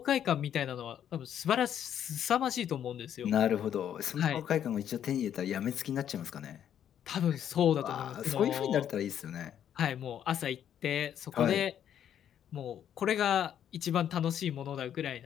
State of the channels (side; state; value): right; quieter; 9.8 dB